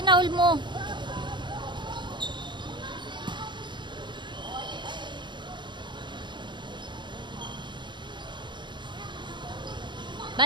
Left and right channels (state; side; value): late; left; 0.22 ms